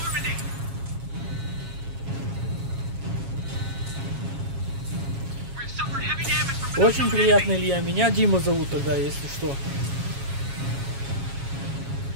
Очень приятно, Илья. Меня Дима зовут тогда, если что.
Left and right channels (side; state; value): left; late; 7.3 ms